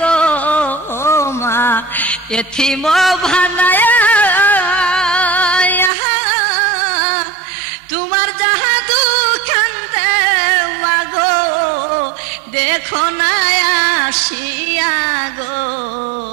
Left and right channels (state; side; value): drops out; left; at 5.9 s